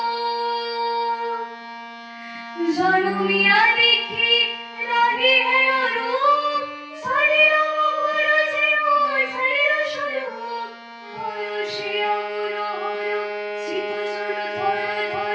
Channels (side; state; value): both; identical; correlation 1.00